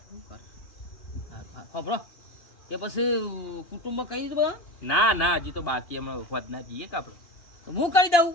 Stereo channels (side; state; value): right; late; 2.8 ms